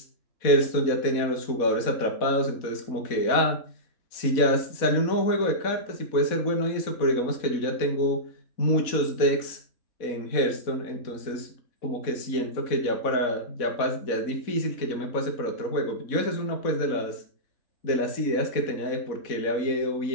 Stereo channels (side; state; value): right; late; 4.1 ms